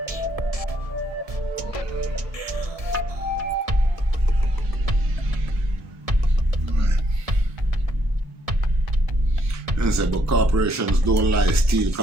But corporations don't lie, steal,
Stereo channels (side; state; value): left; late; 1.7 ms